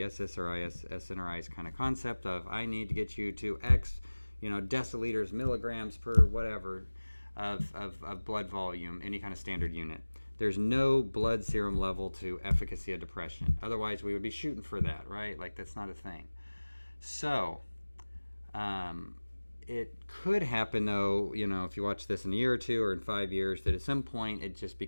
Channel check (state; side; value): inverted; both; correlation -1.00